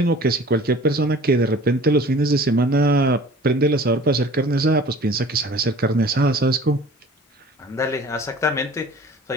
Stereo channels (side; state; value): both; normal; correlation 0.46